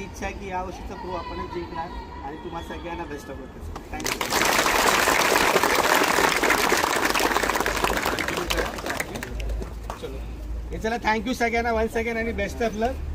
इच्छा आहे की या वर्षीचा प्रो आपणच जिंकणार. आणि तुम्हाला सगळ्यांना बेस्ट ऑफ लक. थँक्यू. चलो हे चला, थँक्यू सगळ्यांना वन्स अगेन आणि बेस्ट ऑफ लक.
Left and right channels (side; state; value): both; identical; correlation 1.00